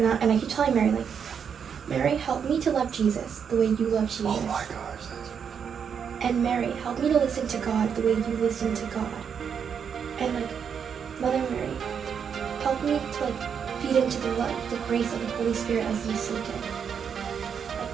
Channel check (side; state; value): left; quieter; 7.2 dB